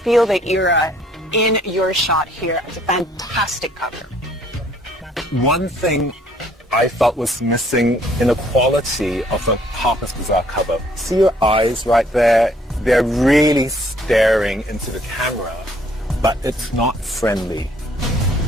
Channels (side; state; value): both; normal; correlation 0.62